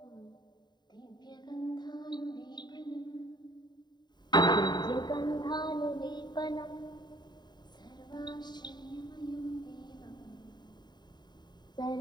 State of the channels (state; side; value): late; right; 0.21 ms